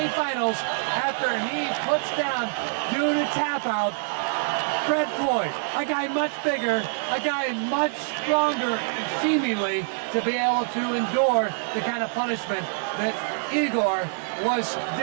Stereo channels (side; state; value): left; silent; digital silence